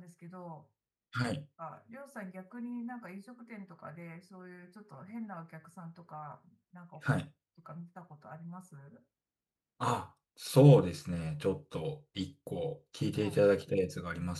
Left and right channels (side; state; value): both; identical; correlation 1.00